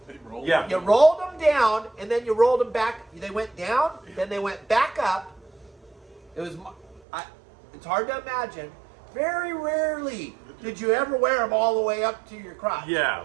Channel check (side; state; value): left; drops out; at 7.0 s